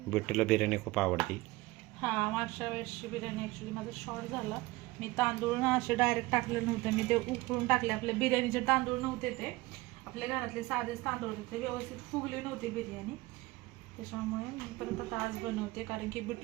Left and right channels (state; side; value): quieter; left; 20.6 dB